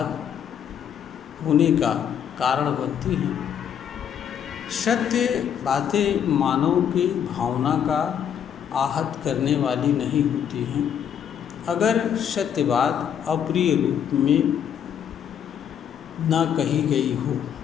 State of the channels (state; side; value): quieter; right; 8.7 dB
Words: होने का कारण बनती हैं? सत्य बातें मानव की भावना का आहत करने वाली नहीं होती हैं। अगर सत्य बात अप्रिय रूप में न कही गई हो